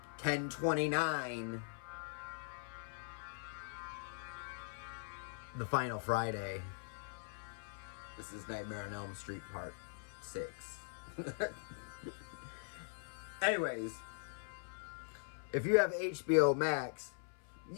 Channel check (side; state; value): right; silent; 50 dB below the other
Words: 10/29. The Final Friday. This is Nightmare on Elm Street Part 6. Anyways, if you have HBO Max,